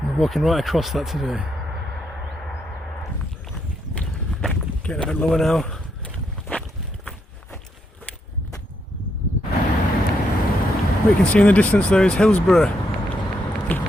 We're walking right across that today. Getting a bit lower now. What you can see in the distance there is Hillsborough,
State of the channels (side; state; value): both; normal; correlation 0.79